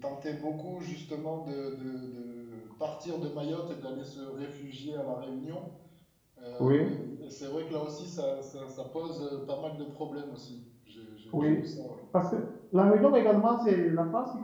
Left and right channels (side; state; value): both; identical; correlation 1.00